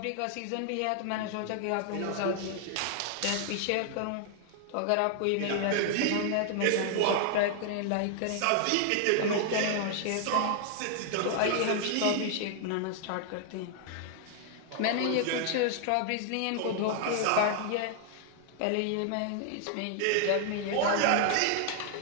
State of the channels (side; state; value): both; different; correlation 0.00